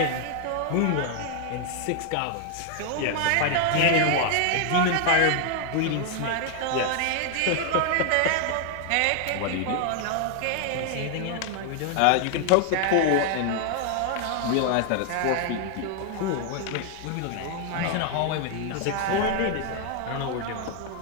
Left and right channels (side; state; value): both; different; correlation 0.00